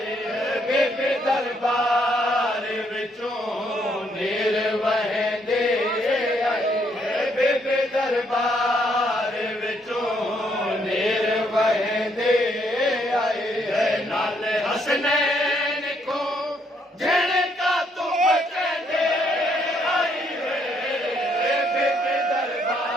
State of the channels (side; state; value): both; normal; correlation 0.71